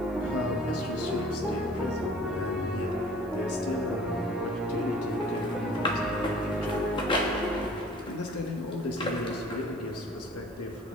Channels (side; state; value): right; noise; hiss, 28 dB below the sound